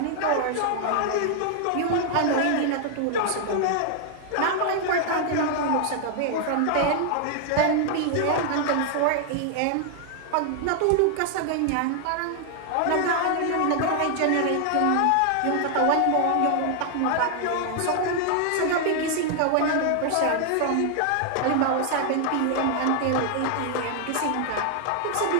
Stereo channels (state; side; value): different; both; correlation 0.00